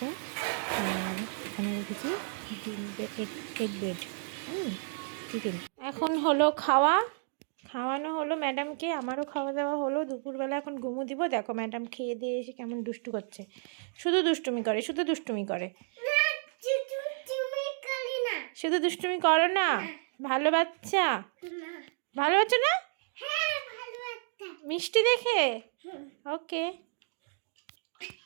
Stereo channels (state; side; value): silent; left; digital silence